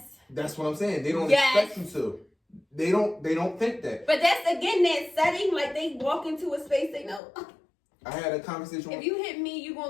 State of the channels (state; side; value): drops out; right; at 7.2 s